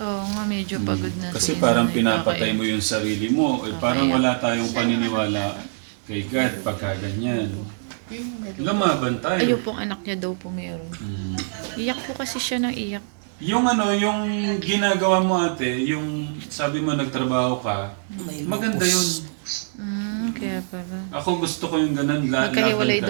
nga, medyo pagod na. Kasi parang pinapatay mo yung sarili mo. Parang wala tayong paniniwala kay God pagka ganyan. Lumaban tayo. Ayun pong anak niya daw po meron. Iyak po kasi siya ng iyak. Yung yung ginagawa mo ate, yung sabi mo nagtrabaho ka, maganda yun. Kaya pala. Ako gusto ko yung ganun, Magkahiwalay laban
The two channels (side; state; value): left; silent; digital silence